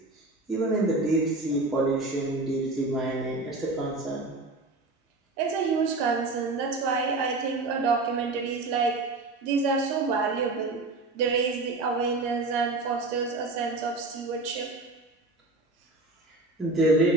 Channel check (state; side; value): quieter; left; 3.2 dB